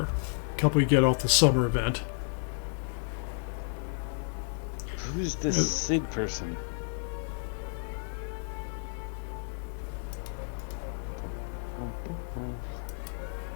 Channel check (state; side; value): silent; right; 57 dB below the other